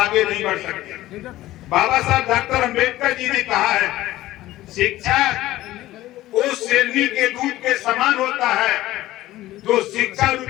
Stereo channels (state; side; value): quieter; right; 15.9 dB